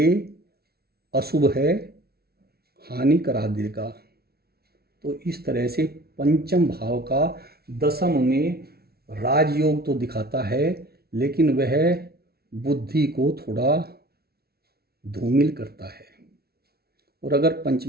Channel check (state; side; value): late; left; 0.45 ms